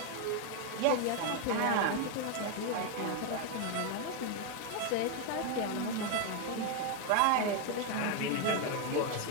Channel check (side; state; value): both; different; correlation 0.01